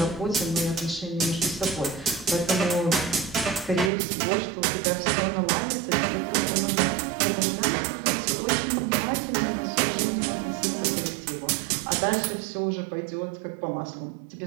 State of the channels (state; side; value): drops out; left; at 3.9 s